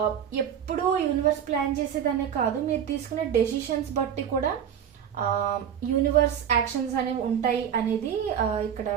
ఎప్పుడూ యూనివర్స్ ప్లాన్ చేసేదనే కాదు, మీరు తీసుకునే డెసిషన్స్ బట్టి కూడా యూనివర్స్ యాక్షన్స్ అనేవి ఉంటాయి అనేది ఇక్కడ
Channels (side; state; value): left; quieter; 8.8 dB